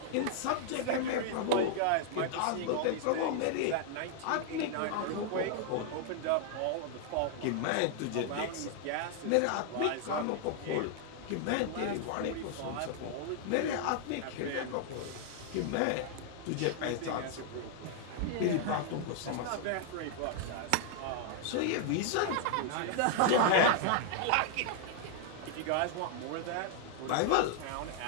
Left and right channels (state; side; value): different; both; correlation 0.00